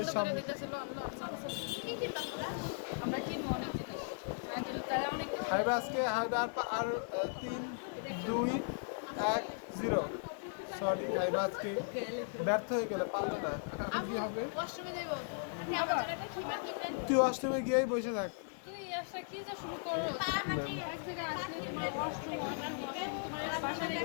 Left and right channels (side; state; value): right; silent; digital silence